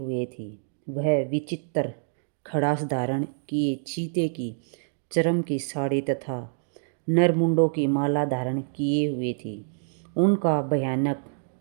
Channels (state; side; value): silent; left; digital silence